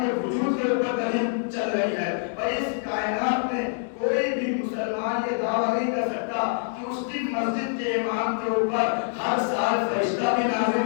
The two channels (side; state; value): right; silent; digital silence